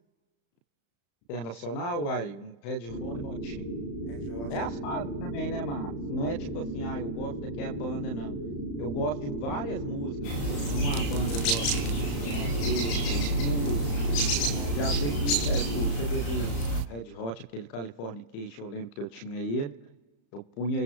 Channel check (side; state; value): right; late; 35 ms